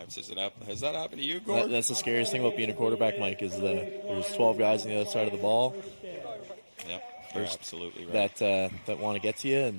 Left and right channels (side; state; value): both; inverted; correlation -1.00